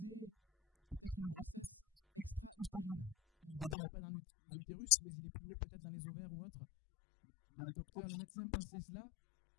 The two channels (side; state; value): right; drops out; at 3.8 s